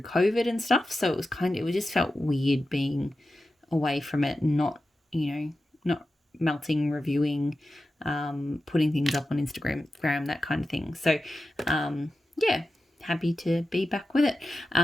COVID and stuff. So it just felt weird being away from it and not melting, reviewing, putting things up on Instagram, that kind of thing. So, happy to be back with it.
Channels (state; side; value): normal; both; correlation 0.92